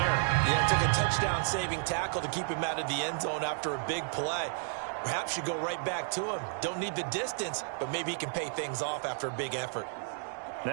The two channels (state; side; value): silent; left; 56 dB below the other